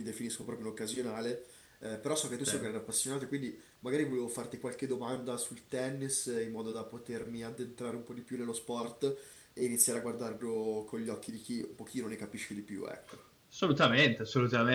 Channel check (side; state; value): both; identical; correlation 1.00